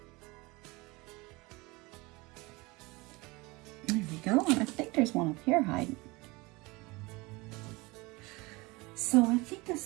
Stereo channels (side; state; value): left; quieter; 23.9 dB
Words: There we go, and I think there's one up here hiding. So I think